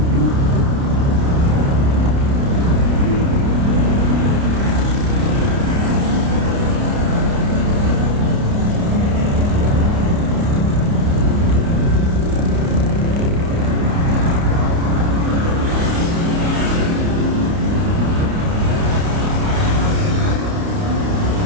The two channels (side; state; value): left; late; 29 ms